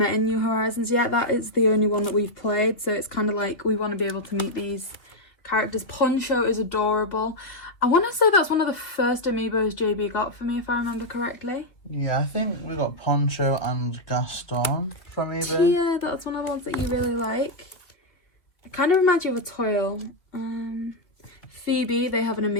in New Horizons yet. That is the only one that we've played, so it's kind of like we want to be able to meet these characters. Poncho is adorable. I want to say that's one of the first Amiibos JB got for me, if I remember correctly. Yeah, I think we got Poncho and Gaston from eBay. Tia, that's one of the ones that you really like. It kind of reminds you of a Toil. Phoebe, they have an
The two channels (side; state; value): right; late; 2.7 ms